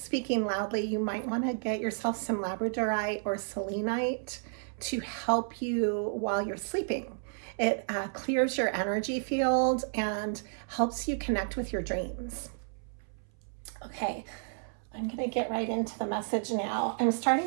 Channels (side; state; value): left; silent; 57 dB below the other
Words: loudly. You might want to get yourself some labradorite or selenite to help you while you're sleeping. It clears your energy field and helps you connect with your dreams. Okay, I'm going to get right into the message now. I'm